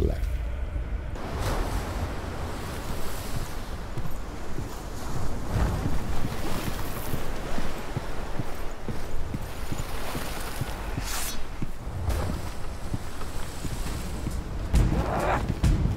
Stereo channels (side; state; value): both; identical; correlation 1.00